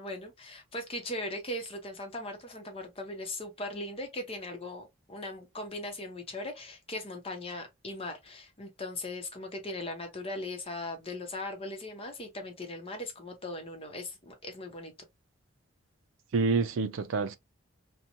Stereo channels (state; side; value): normal; both; correlation 0.02